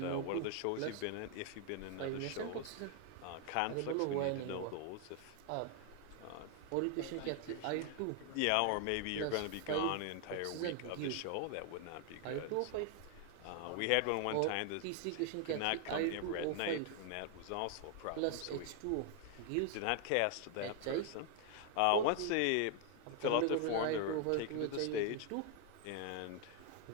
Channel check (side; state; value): both; different; correlation 0.00